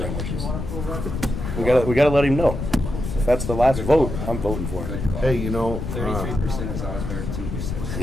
We gotta let him know. If that's the last vote, I'm voting for it. Hey, you know, 33% is always better than 2%.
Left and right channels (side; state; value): left; noise; rumble, 5 dB below the sound